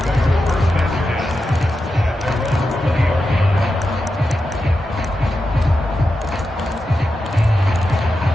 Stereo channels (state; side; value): normal; both; correlation 0.89